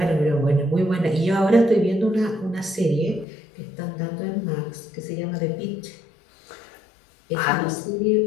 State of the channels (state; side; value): drops out; right; at 3.2 s